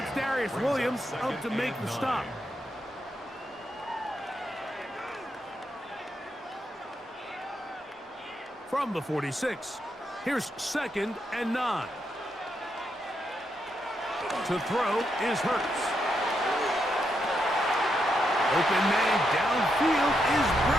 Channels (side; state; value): both; normal; correlation 0.81